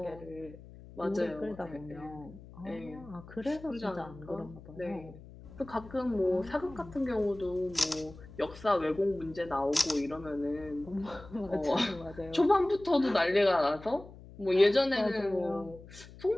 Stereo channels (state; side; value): noise; left; hum, 18 dB below the sound